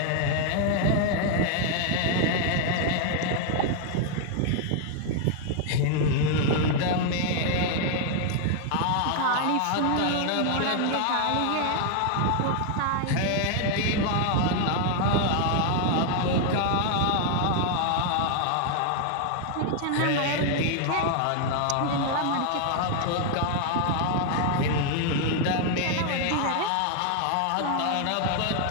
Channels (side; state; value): both; different; correlation 0.00